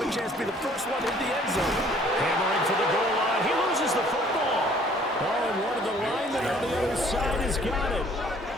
a chance to be the first one in the end zone. Hammering for the goal line. He loses the football. Oh, and one of the linemen on the other side has got it.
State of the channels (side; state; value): both; normal; correlation 0.57